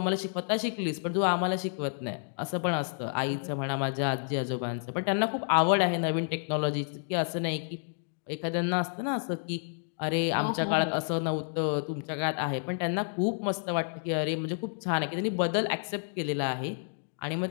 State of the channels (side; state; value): right; silent; digital silence